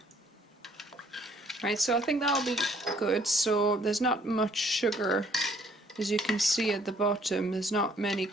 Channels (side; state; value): both; normal; correlation 0.62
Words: Right, so I think that'll be good. So there's not much sugar, as you can see at the bottom. There's not many